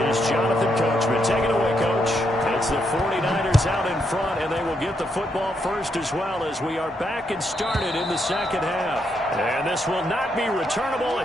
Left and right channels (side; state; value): both; normal; correlation 0.79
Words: is Jonathan Coachman. Take it away, Coach. It's the 49ers out in front, and they will get the football first as well as we are back and started in the second half. And this will not be returnable.